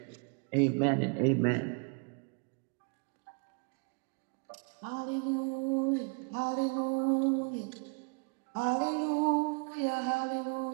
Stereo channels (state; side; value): quieter; left; 35.4 dB